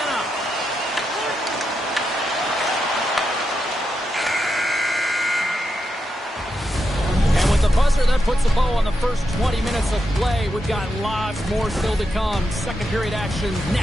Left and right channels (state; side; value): normal; both; correlation 0.85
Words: Buzzer, that puts a bow on the first 20 minutes of play. We've got lots more still to come. Second period action